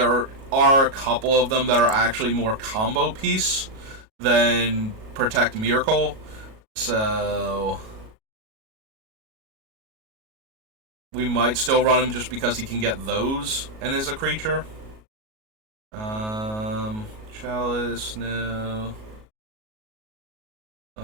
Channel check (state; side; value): late; left; 37 ms